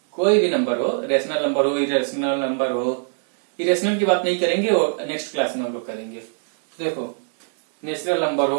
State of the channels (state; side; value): silent; left; digital silence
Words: कोई भी नंबर हो, रेशनल नंबर हो, इरेशनल नंबर हो, इरेशनल की बात नहीं करेंगे और नेक्स्ट क्लास में हम लोग करेंगे। देखो, नेचुरल नंबर हो,